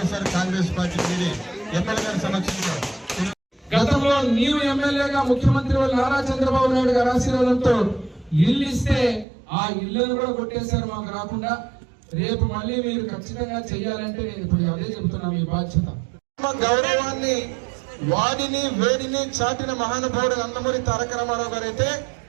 కాంగ్రెస్ పార్టీ ఎమ్మెల్యే గారి సమక్షంలో గతంలో నీవు ఎమ్మెల్యేగా ముఖ్యమంత్రి నారా చంద్రబాబు నాయుడు గారి ఆశీర్వాదంతో ఇల్లు ఇస్తే ఆ ఇళ్లను కూడా కొట్టేశారు మాకు రాకుండా. రేపు మళ్ళీ మీరు ఖచ్చితంగా చెయ్యాలంటే నేను ఇప్పుడు అదే చెబుతున్నా, మీ బాధ్యత. గౌరవాన్ని వాడిని వేడిని చాటిన మహానుభావుడు నందమూరి తారక రామారావు గారు అయితే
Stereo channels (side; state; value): left; drops out; at 9.2 s